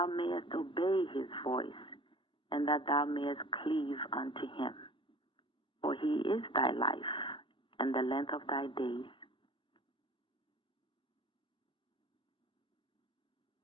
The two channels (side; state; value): right; late; 0.25 ms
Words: mayest obey His voice, and that thou mayest cleave unto Him. For He is thy life, and the length of thy days.